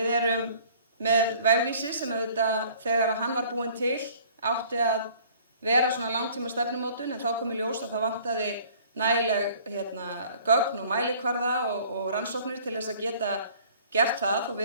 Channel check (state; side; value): inverted; both; correlation -0.53